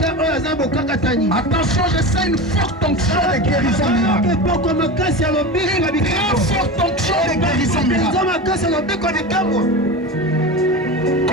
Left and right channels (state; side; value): normal; both; correlation 0.26